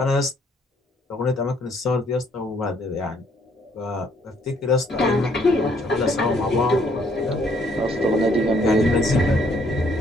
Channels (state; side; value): normal; both; correlation 0.67